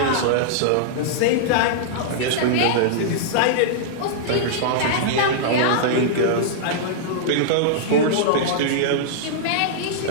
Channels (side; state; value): both; different; correlation -0.02